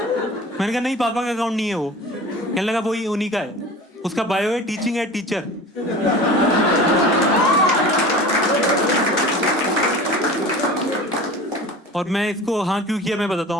मैंने कहा नहीं, पापा का अकाउंट नहीं है वो। कहने लगा वही उन्हीं का है, उसका बायो है टीचिंग एट टीचर। और मैं इसको हाँ क्यों किया मैं बताता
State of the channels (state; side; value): normal; both; correlation 0.38